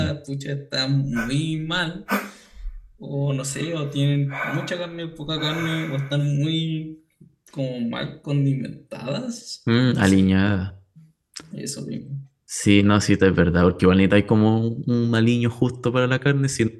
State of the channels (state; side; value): identical; both; correlation 1.00